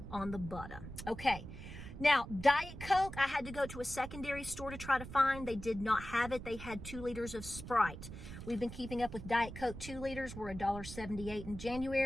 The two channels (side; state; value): right; noise; rumble, 11 dB below the sound